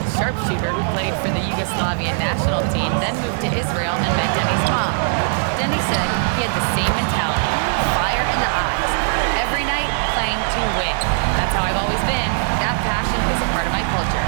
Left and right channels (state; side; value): silent; left; digital silence